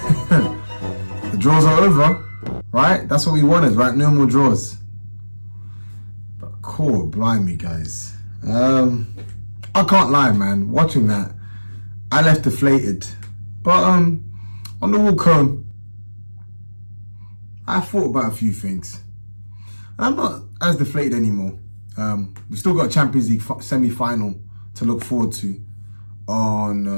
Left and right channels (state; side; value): inverted; both; correlation -1.00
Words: The draws are over, right? That's what we wanted, right? No more draws. But cool, blimey, guys. I can't lie, man. Watching that, I left deflated. But on the walk home, I thought about a few things. I'm not as deflated anymore. We've still got a Champions League semi-final to look forward to